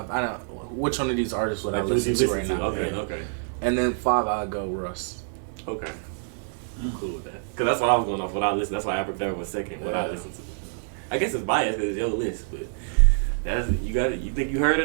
don't which one of these artists would I listen to right now? Okay. And then 5 I'll go Russ. Okay. I'm cool with that. Cause that's what I was going off. What I listen. That's why Abracadabra was second. What I listened to. I guess it's biased because it's your list, but that's you got it. You think you heard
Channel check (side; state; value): left; silent; digital silence